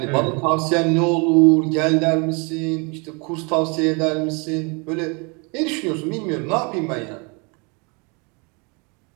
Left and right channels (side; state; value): left; quieter; 32.1 dB